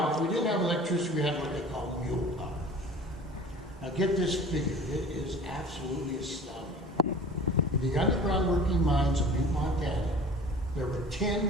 if we didn't have electricity, we had what they call mule power. Now get this figure, it is absolutely astounding. In the underground working mines of Butte, Montana, there were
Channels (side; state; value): both; normal; correlation 0.43